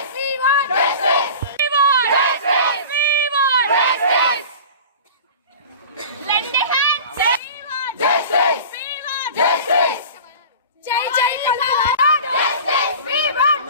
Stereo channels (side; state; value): both; inverted; correlation -0.38